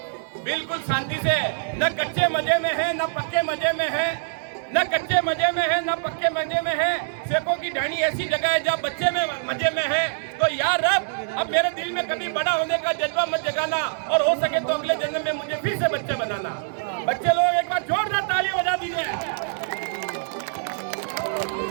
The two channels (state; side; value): silent; left; 62 dB below the other